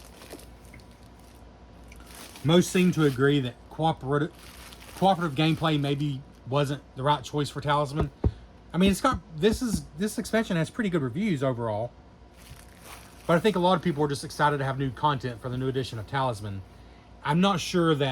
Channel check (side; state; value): both; identical; correlation 1.00